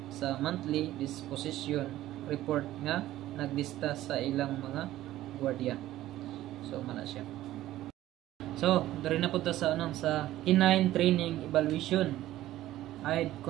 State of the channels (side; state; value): left; quieter; 14.6 dB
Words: sa monthly disposition report nga naglista sa ilang mga gwardiya. So mana siya. So dari na punta sa sa canine training evaluation,